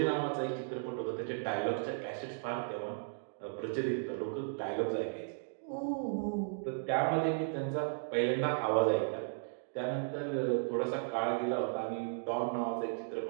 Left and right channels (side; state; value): left; silent; digital silence